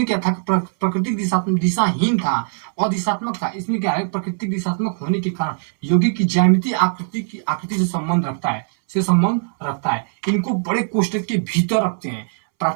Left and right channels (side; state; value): left; silent; 66 dB below the other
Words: क्या था, प्राकृतिक दिशाहीन था और दिशात्मक था। इसमें क्या है, प्राकृतिक दिशात्मक होने के कारण यौगिक की ज्यामितीय आकृति से संबंध रखता है। इनको बड़े कोष्ठक के भीतर रखते हैं।